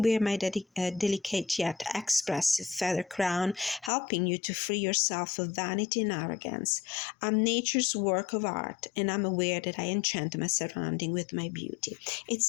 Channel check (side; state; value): right; drops out; at 3.9 s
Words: my delicate yet expressive feather crown, helping you to free yourself of vanity and arrogance. I'm nature's work of art, and I'm aware that I enchant my surrounding with my beauty.